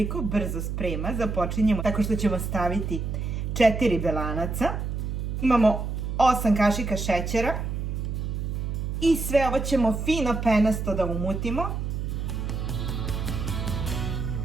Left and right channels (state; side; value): noise; right; hum, 3 dB below the sound